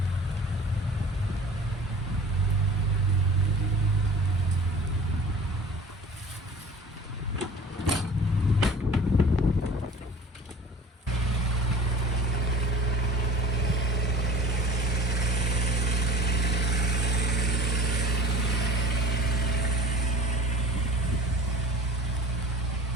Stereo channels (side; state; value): both; normal; correlation 0.41